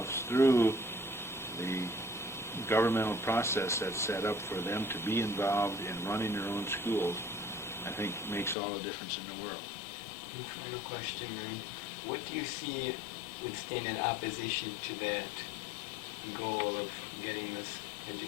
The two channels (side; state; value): right; drops out; at 8.6 s